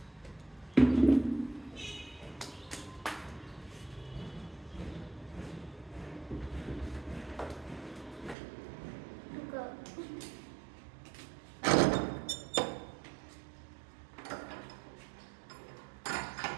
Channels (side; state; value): left; drops out; at 8.3 s